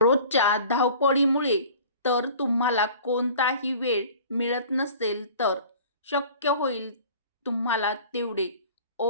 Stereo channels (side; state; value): both; inverted; correlation -0.45